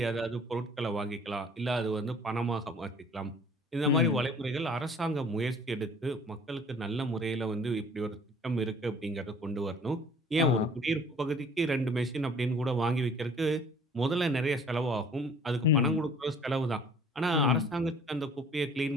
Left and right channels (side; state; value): both; normal; correlation 0.52